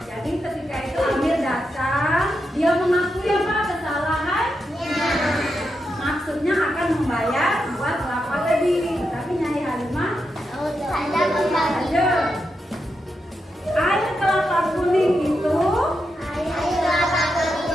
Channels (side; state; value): both; normal; correlation 0.85